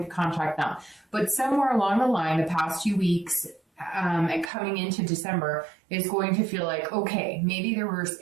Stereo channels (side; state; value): left; drops out; at 4.5 s